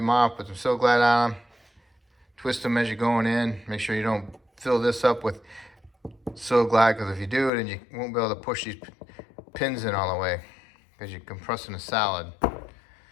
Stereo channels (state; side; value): drops out; right; at 7.5 s